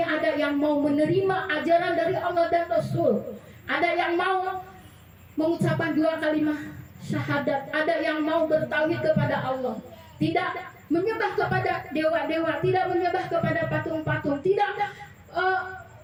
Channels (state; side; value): identical; both; correlation 1.00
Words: ada yang mau menerima ajaran dari Allah dan Rasul. Ada yang mau mengucapkan 2 kalimat syahadat. Ada yang mau bertauhid kepada Allah. Tidak menyembah kepada dewa-dewa, tidak menyembah kepada patung-patung, tidak